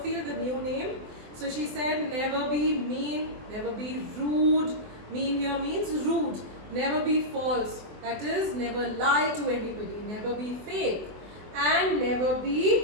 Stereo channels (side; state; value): left; late; 24 ms